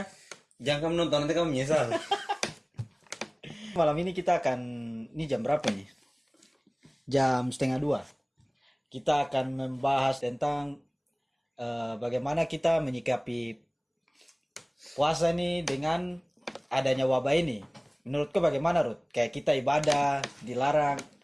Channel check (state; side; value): identical; both; correlation 1.00